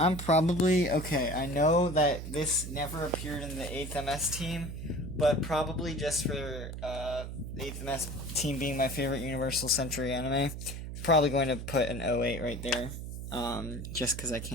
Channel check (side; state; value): right; noise; hum, 7 dB below the sound